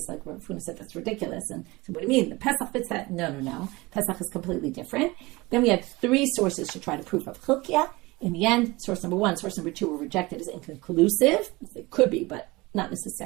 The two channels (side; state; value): left; quieter; 22.2 dB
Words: like Rav Huna said that's ridiculous. And so what do you mean? The Pesach fits that? No. Pesach is completely different. Then we had 3 sources to try to prove Rav Chilkiya. In the end, source number 1, source number 2 were rejected as inconclusive. It could be, but not